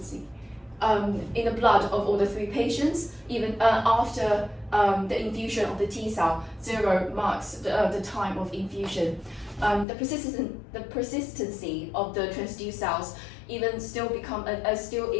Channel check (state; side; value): drops out; right; at 9.9 s